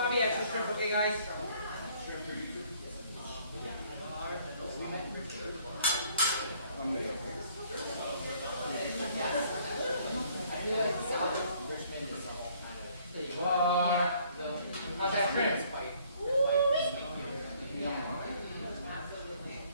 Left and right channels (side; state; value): both; inverted; correlation -0.62